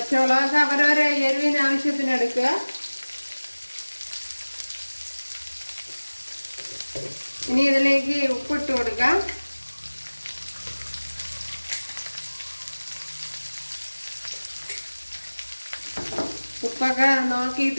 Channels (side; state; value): both; inverted; correlation -1.00